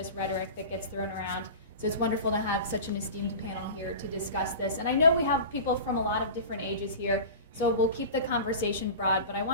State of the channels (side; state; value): both; inverted; correlation -0.33